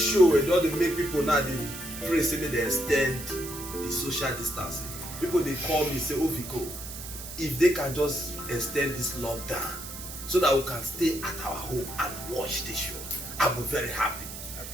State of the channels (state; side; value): noise; right; hiss, 10 dB below the sound